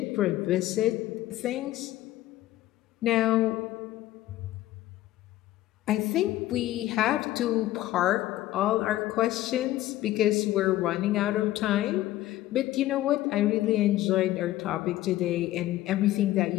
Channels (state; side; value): quieter; right; 15.3 dB